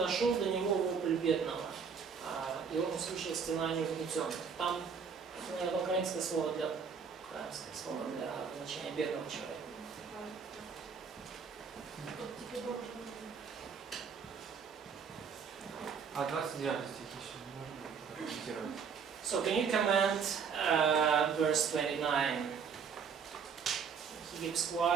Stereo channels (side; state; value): left; quieter; 6.3 dB